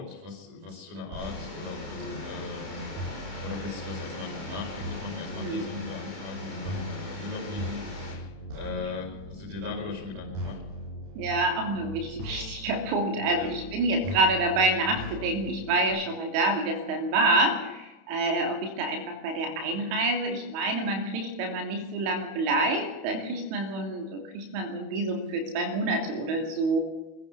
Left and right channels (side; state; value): left; late; 31 ms